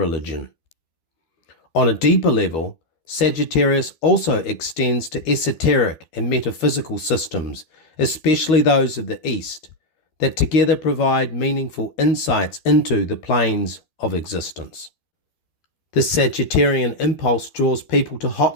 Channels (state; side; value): late; right; 12 ms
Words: On a deeper level, Sagittarius also extends to esoteric and metaphysical systems, especially those of the East, that together provide meaningful insights into the planes of existence. The Sagittarian impulse draws people to